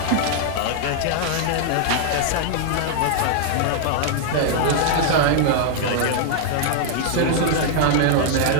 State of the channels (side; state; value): both; different; correlation 0.00